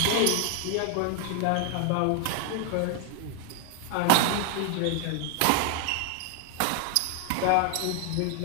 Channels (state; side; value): different; both; correlation 0.00